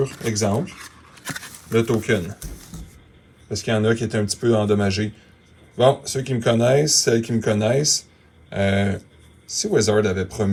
exemple, le token. Parce qu'il y en a qui étaient un petit peu endommagés. Bon, ceux qui me connaissent, celles qui me connaissent, si Wizard avait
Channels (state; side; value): identical; both; correlation 1.00